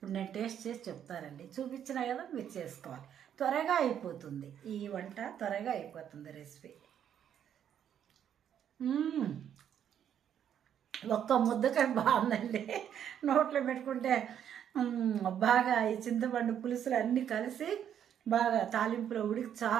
నేను టేస్ట్ చేసి చెప్తానండి. చూపించినా కదా మీరు చేసుకోవాలి. త్వరగా అయిపోతుంది ఈ వంట, త్వరగా అయిపోతుంది రెసిపీ. ఒక్క ముద్దకాయ బాగుందండి. నోట్లో పెట్టుకుంటే బాగా ఈ చింతపండు పులుసులు అన్నీ కలిసి బాగా తాలింపులో ఉడికి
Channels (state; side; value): quieter; left; 9.3 dB